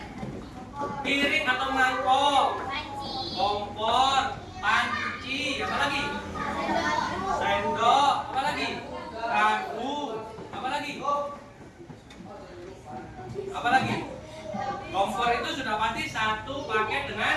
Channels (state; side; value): identical; both; correlation 1.00